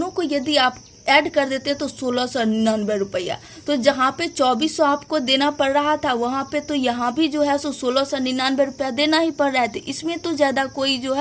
को यदि आप ऐड कर देते तो 1699 रुपया। तो जहाँ पे 2400 आपको देना पड़ रहा था वहाँ पे तो यहाँ भी जो है सो 1699 रुपया देना ही पड़ रहा है। तो इसमें तो ज़्यादा कोई जो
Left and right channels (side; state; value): both; identical; correlation 1.00